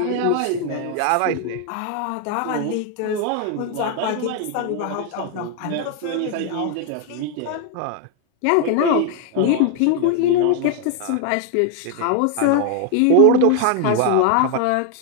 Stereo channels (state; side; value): different; both; correlation 0.00